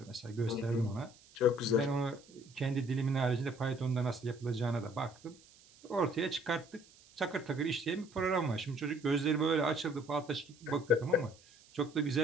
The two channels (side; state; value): right; noise; hiss, 25 dB below the sound